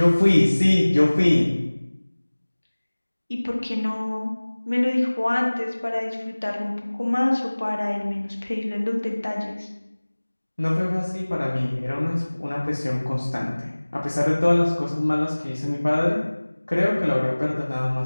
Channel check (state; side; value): inverted; both; correlation -1.00